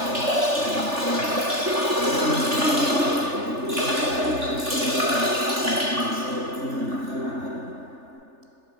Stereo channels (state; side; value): late; left; 3.4 ms